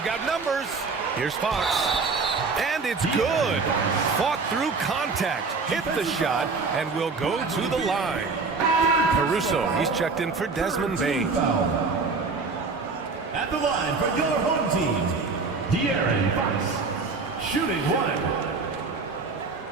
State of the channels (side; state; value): left; quieter; 4.3 dB